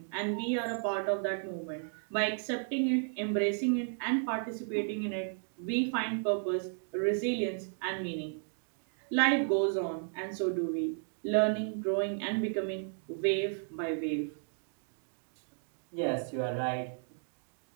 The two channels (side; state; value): left; silent; 55 dB below the other